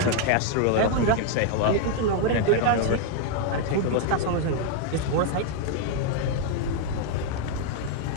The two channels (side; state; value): both; different; correlation 0.00